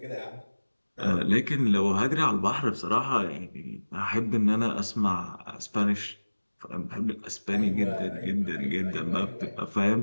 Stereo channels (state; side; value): inverted; both; correlation -1.00